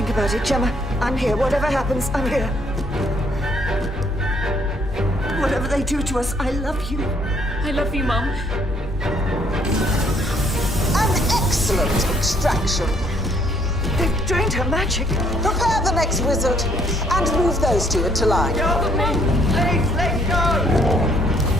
about it, Gemma. I'm here. Whatever happens, I'm here. Whatever they do to us, I love you. I love you, Mum. An excellent extraction. They've drained her magic. Prepare the next wizard and move those two into line. Please, let go!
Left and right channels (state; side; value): normal; both; correlation 0.66